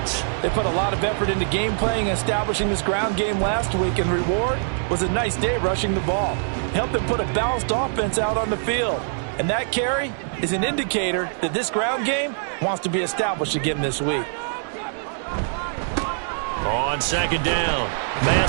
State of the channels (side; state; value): left; silent; digital silence